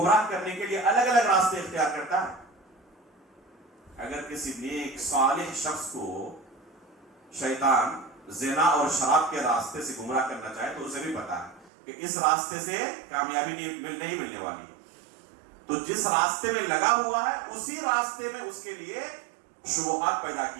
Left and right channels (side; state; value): left; drops out; at 11.7 s